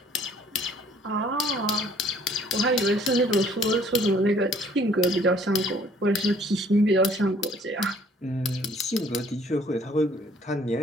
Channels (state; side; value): normal; both; correlation 0.59